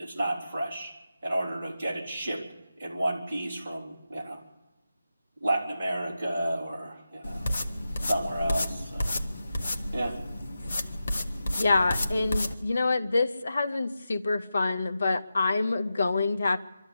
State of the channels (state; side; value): inverted; both; correlation -0.91